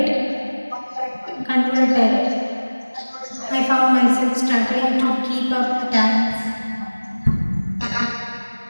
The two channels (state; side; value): inverted; both; correlation -1.00